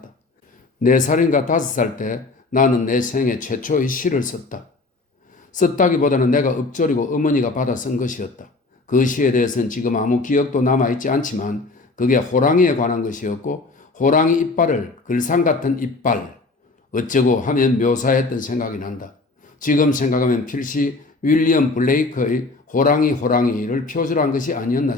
4살인가 5살 때 나는 내 생애 최초의 시를 썼다. 썼다기보다는 내가 읊조리고 어머니가 받아 쓴 것이었다. 그 시에 대해서는 지금 아무 기억도 남아있지 않지만 그게 호랑이에 관한 것이었고 호랑이 이빨을 글상 같은 이빨 어쩌고 하면 묘사했던 생각이 난다. 지금 생각하면 필시 윌리엄 블레이크의 호랑이를 표절한 것이 아니었나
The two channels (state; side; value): quieter; right; 3.5 dB